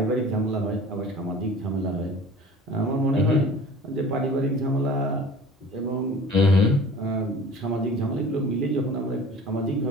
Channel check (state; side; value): normal; both; correlation 0.43